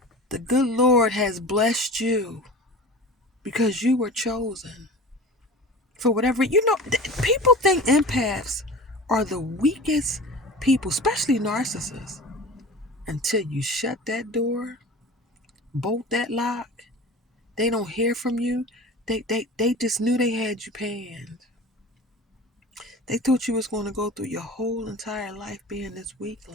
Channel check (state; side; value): normal; both; correlation 0.36